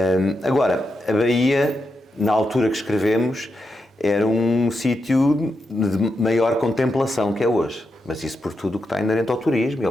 Agora, a Baía, na altura que escrevemos, era um sítio de maior contemplação que é hoje. Mas isso por tudo o que está inerente ao turismo e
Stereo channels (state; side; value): normal; both; correlation 0.86